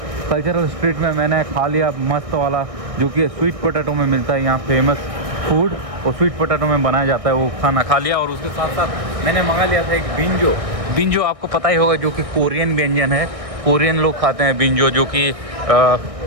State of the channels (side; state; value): left; late; 1.6 ms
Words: कल्चरल स्ट्रीट में मैंने खा लिया मस्त वाला, जो कि स्वीट पोटैटो में मिलता है यहाँ फेमस फूड, और स्वीट पोटैटो में बनाया जाता है, वो खाना खा लिया। और उसके साथ साथ मैंने मंगा लिया था एक बिंजो। बिंजो आपको पता ही होगा, जो कि कोरियन व्यंजन है, कोरियन लोग खाते हैं बिंजो, जो कि